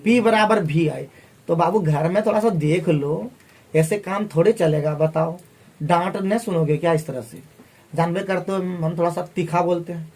P बराबर भी आई। तो बाबू घर में थोड़ा सा देख लो, ऐसे काम थोड़े चलेगा बताओ। डांट नहीं सुनोगे क्या इस तरह से? जानबे करते हो हम थोड़ा सा तीखा बोलते हैं।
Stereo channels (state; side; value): identical; both; correlation 1.00